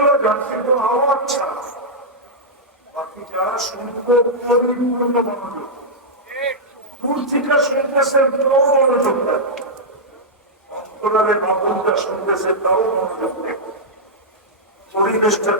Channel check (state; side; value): normal; both; correlation -0.08